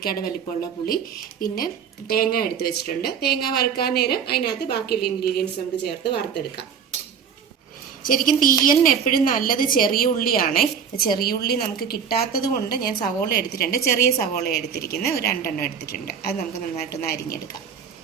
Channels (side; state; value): left; quieter; 7.1 dB